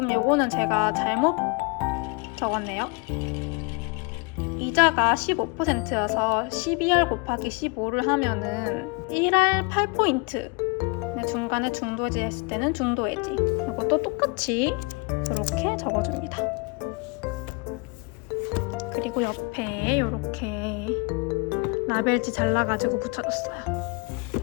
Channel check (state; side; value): quieter; right; 31.1 dB